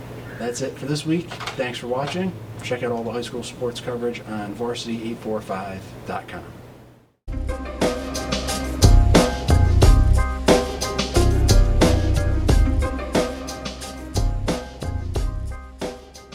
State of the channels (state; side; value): identical; both; correlation 1.00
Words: That's it for this week. Thanks for watching. Check out all the high school sports coverage on Varsity845.com.